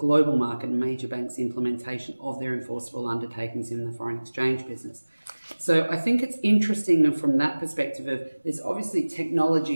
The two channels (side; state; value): both; inverted; correlation -1.00